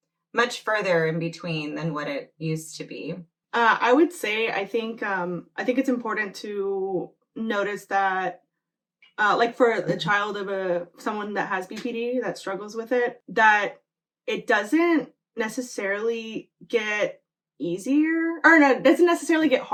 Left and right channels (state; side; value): identical; both; correlation 1.00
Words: much further in between than what it used to be. I would say I think it's important to notice that like for the child of someone that has BPD that struggles with it, that it doesn't necessarily get easier, or no, it doesn't necessarily get